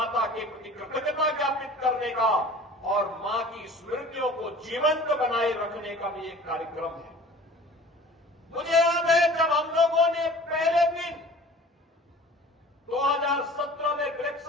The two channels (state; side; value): normal; both; correlation 0.45